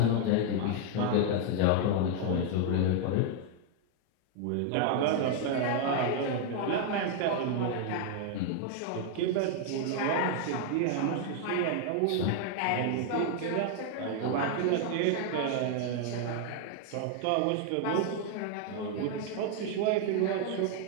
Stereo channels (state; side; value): different; both; correlation 0.00